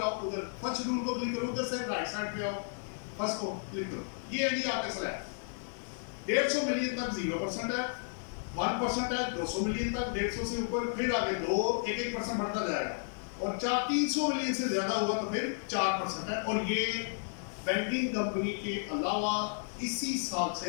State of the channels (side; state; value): right; silent; digital silence